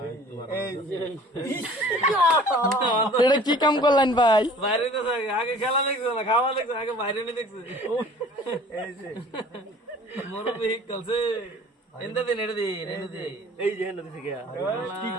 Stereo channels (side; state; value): both; normal; correlation 0.49